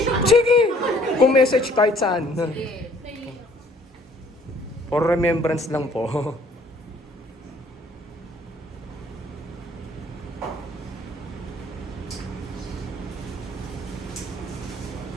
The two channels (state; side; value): normal; both; correlation 0.59